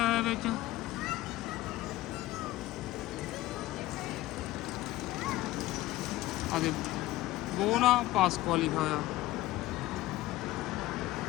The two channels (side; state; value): right; quieter; 16.7 dB